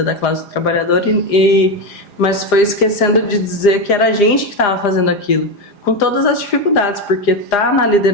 da classe trabalhadora, mas foi esquecendo de dizer que era a gente que estava fazendo aquilo, com todas as dificuldades, porque estar na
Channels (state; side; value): late; right; 4.9 ms